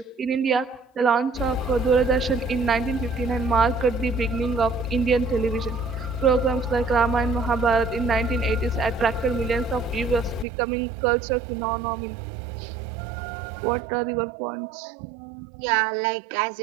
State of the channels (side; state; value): left; drops out; at 10.5 s